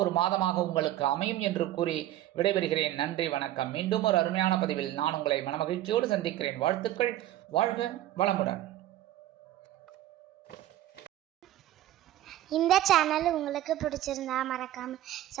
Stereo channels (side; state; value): left; quieter; 13.8 dB